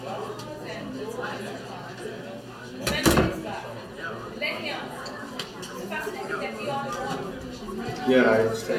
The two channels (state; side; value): identical; both; correlation 1.00